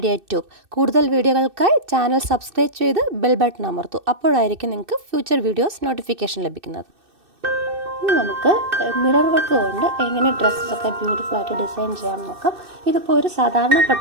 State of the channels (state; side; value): late; left; 2.6 ms